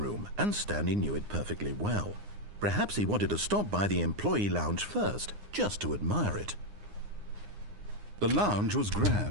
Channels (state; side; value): late; left; 9.7 ms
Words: and Stanley knew it perfectly well. Perhaps he wanted to stop by the employee lounge first, just to admire it. The lounge was